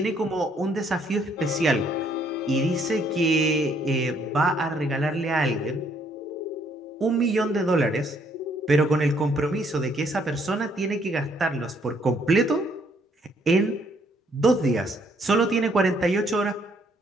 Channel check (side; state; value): both; normal; correlation 0.67